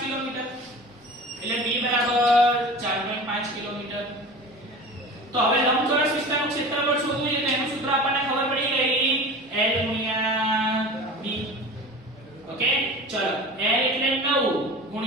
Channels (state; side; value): normal; both; correlation 0.36